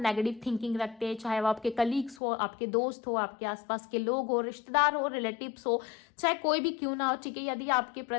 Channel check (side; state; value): right; drops out; at 2.2 s